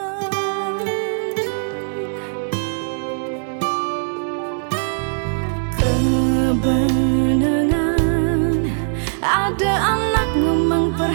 kebenangan ada anak ngomong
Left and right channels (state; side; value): silent; left; digital silence